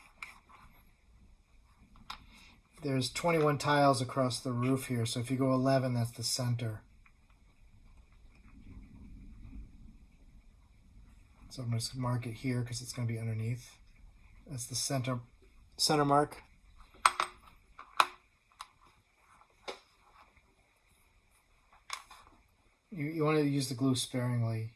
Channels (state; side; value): identical; both; correlation 1.00